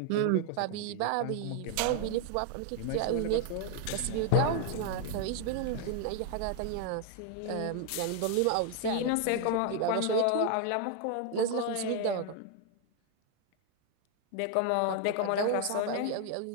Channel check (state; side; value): different; both; correlation 0.00